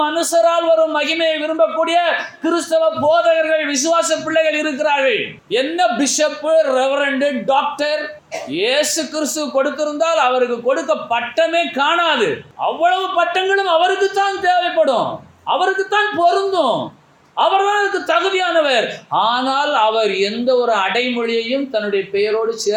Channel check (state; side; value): identical; both; correlation 1.00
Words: மனுஷரால் வரும் மகிமையை விரும்பக்கூடிய கிறிஸ்தவ போதகர்கள், விசுவாச பிள்ளைகள் இருக்கிறார்கள். என்ன பிஷப்பு, ரெவரண்டு, டாக்டர் இயேசு கிறிஸ்து கொடுத்திருந்தால் அவருக்கு கொடுக்க பட்டமே காணாது. அவ்வளவு பட்டங்களும் அவருக்கு தான் தேவைப்படும், அவருக்கு தான் பொருந்தும், அவர்தான் அதுக்கு தகுதியானவர். ஆனால் அவர் எந்த ஒரு அடைமொழியையும் தன்னுடைய பெயரோடு